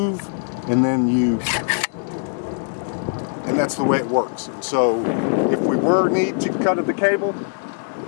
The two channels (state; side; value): silent; right; digital silence